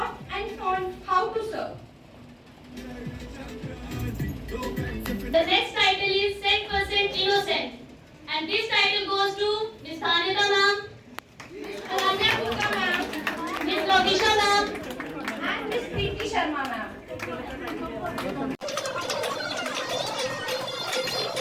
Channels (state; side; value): identical; both; correlation 1.00